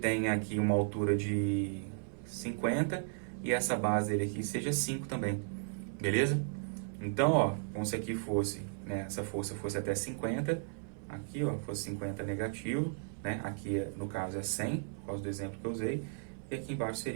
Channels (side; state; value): left; silent; 54 dB below the other